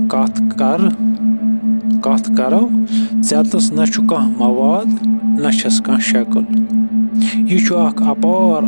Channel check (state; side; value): inverted; both; correlation -1.00